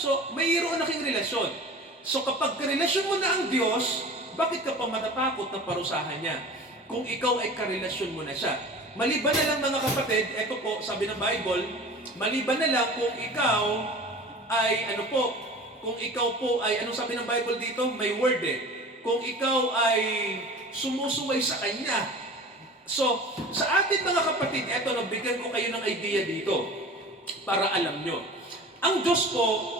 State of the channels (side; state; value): both; normal; correlation 0.39